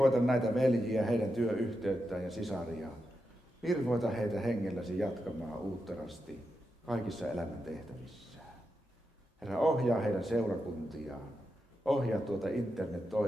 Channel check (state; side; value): normal; both; correlation 0.87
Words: näitä veljiä, heidän työyhteyttään ja sisaria. Virvoita heitä hengelläsi jatkamaan uutterasti kaikissa elämän tehtävissään. Herra, ohjaa heidän seurakuntiaan. Ohjaa tuota